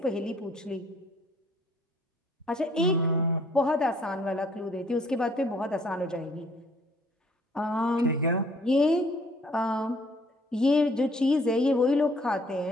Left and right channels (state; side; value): normal; both; correlation 0.60